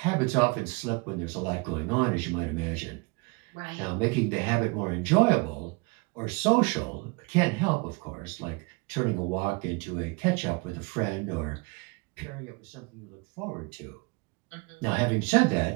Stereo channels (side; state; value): left; quieter; 28.1 dB